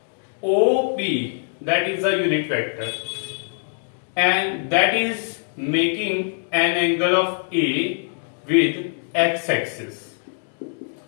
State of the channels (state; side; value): silent; right; digital silence